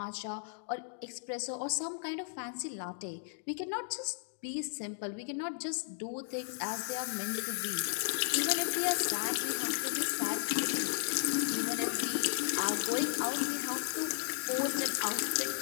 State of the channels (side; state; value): right; silent; digital silence